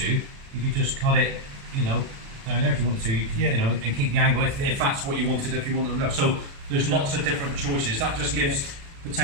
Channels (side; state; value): left; late; 36 ms